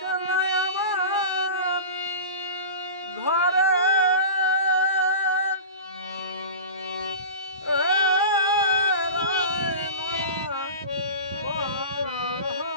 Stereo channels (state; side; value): inverted; both; correlation -0.32